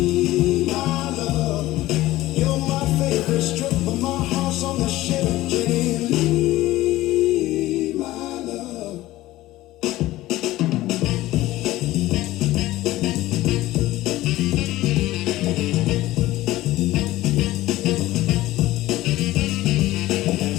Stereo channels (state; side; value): quieter; right; 16.6 dB